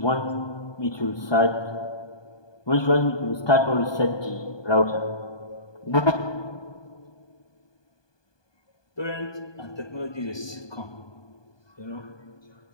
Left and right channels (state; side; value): late; right; 1.2 ms